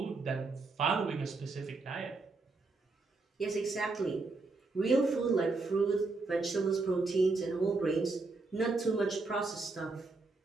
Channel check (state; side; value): quieter; left; 3.6 dB